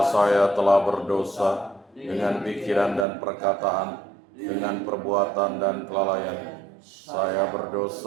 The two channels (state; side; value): drops out; left; at 3.1 s